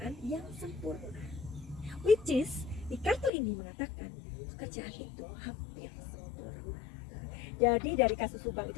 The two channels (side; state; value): right; drops out; at 3.3 s